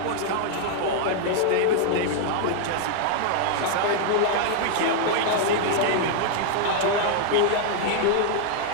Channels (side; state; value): both; different; correlation 0.00